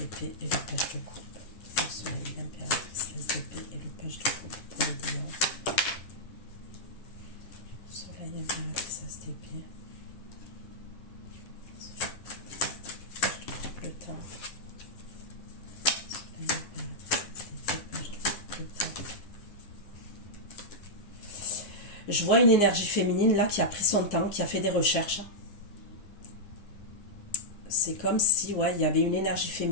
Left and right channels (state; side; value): late; right; 10 ms